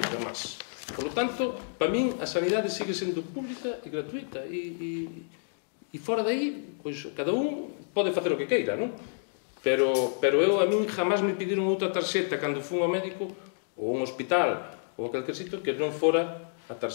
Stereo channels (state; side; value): silent; right; digital silence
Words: máis. Por lo tanto, para min, a sanidade sigue sendo pública e gratuita. E fora de aí, pois, cada un pode facer o que queira, non? Pero a min jamás me pediron outra tarxeta cando fun ao médico ou a un hospital, ou a calquer sitio que non fora a